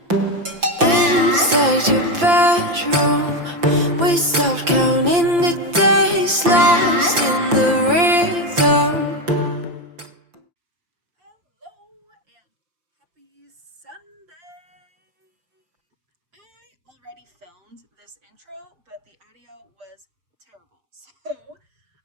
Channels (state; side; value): late; left; 5.8 ms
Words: your bedroom, we stopped counting the days, lost in the rhythm. Hello and happy Sunday! I already filmed this intro, but the audio was terrible. So